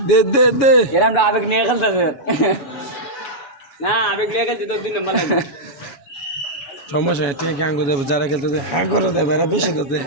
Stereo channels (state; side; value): late; right; 6.9 ms